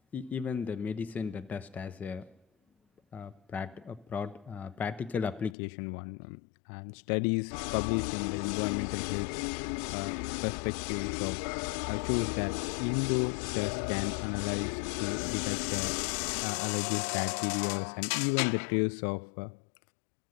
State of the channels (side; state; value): right; drops out; at 5.6 s